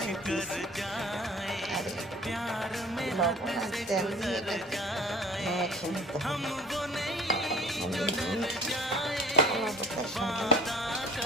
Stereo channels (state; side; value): normal; both; correlation 0.47